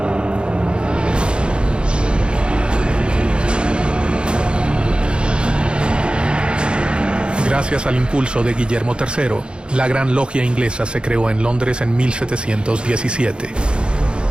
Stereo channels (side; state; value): left; late; 0.054 ms